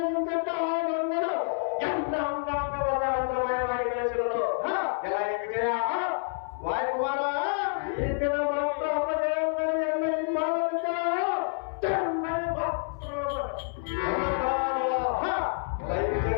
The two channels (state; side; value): silent; right; 59 dB below the other